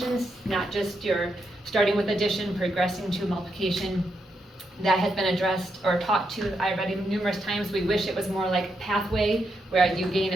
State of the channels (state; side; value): normal; both; correlation 0.82